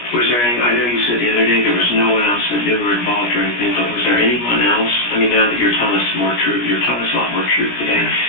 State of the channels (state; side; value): late; right; 17 ms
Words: Was there any, I know you said the other day there was no one else that knew or involved or anything, but was there anyone else? I mean, now that you're telling us more truth, you're telling us a lot more truth today.